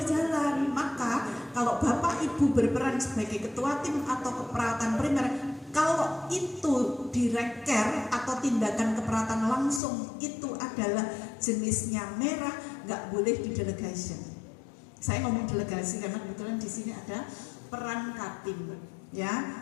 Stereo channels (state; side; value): drops out; right; at 9.8 s